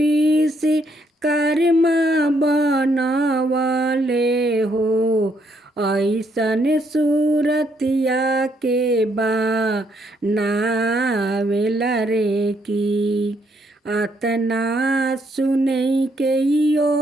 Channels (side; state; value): both; normal; correlation 0.72